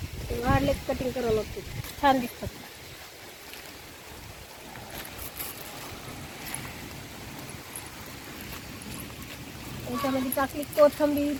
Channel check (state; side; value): identical; both; correlation 1.00